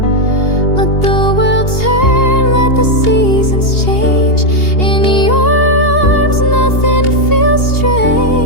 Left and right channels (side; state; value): right; late; 2.8 ms